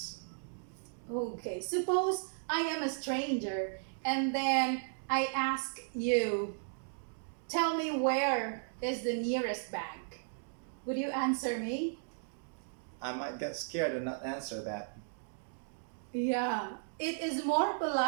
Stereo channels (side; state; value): left; silent; digital silence